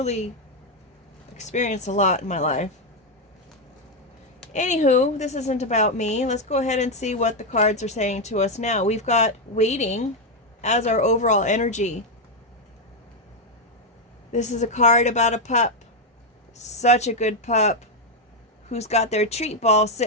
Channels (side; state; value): both; normal; correlation 0.03